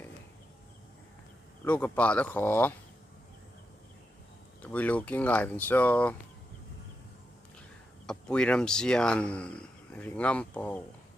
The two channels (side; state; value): both; normal; correlation 0.86